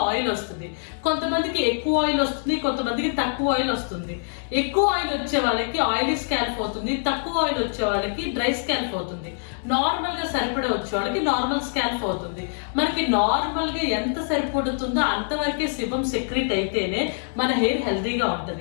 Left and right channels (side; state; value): right; silent; digital silence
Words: ఆయిల్ వస్తుంది. కొంతమందికి ఎక్కువ ఆయిల్ వస్తుంది, కొంతమందికి తక్కువ ఆయిల్ వస్తుంది. ఎక్కువ ఆయిల్ వచ్చే వాళ్ళకి ఆయిలీ స్కాల్ప్ అవుతుంది, తక్కువ ఆయిల్ వచ్చే వాళ్ళకి డ్రై స్కాల్ప్ అవుతుంది. నార్మల్గా సరిపడా వచ్చే వాళ్ళకి నార్మల్ స్కాల్ప్ అవుతుంది. మనకి నార్మల్గా ఎంత సరిపడుతుందో అంతవరకే సిబం సెక్రెట్ అయితేనే మన హెయిర్ హెల్తీగా